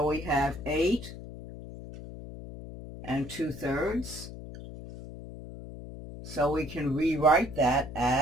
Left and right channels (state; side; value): noise; left; hum, 12 dB below the sound